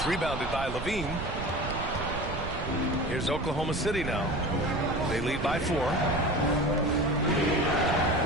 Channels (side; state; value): right; noise; rumble, 6 dB below the sound